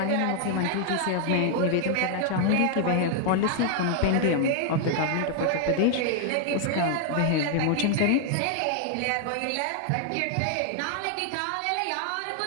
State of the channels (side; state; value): both; different; correlation 0.00